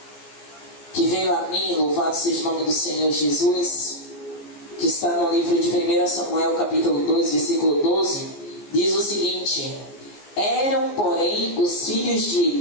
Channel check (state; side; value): late; right; 14 ms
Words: que veio a mim, louvado seja o nome do Senhor Jesus, que está no livro de 1 Samuel, capítulo 2, versículo 12, diz o seguinte: eram, porém, os filhos de